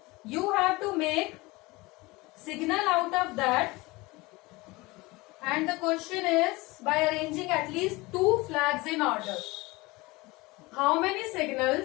You have to make signal out of that, and the question is by arranging at least 2 flags in order. How many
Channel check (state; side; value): quieter; right; 22.6 dB